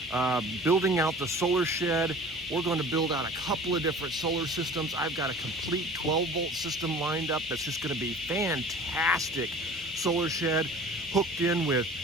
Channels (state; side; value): normal; both; correlation 0.43